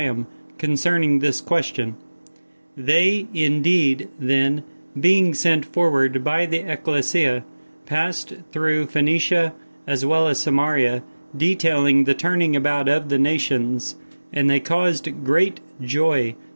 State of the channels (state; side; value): inverted; both; correlation -1.00